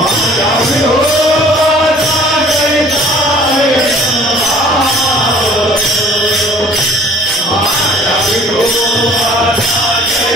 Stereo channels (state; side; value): normal; both; correlation 0.52